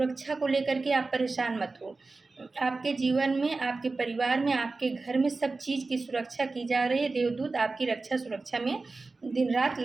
को लेकर के आप परेशान मत हो। आपके जीवन में, आपके परिवार में, आपके घर में सब चीज़ की सुरक्षा की जा रही है। देवदूत आपकी रक्षा सुरक्षा में दिन रात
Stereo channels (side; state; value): left; quieter; 3.7 dB